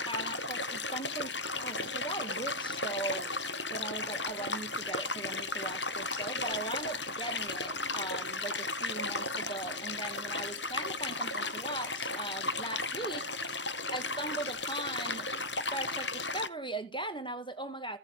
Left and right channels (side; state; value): both; normal; correlation -0.04